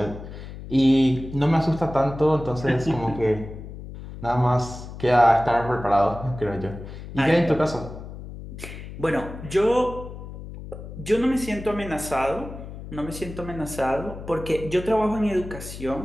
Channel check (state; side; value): noise; left; hum, 12 dB below the sound